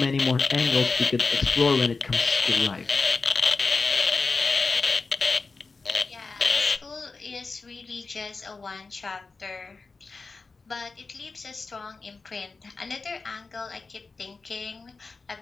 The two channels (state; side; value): quieter; right; 4.2 dB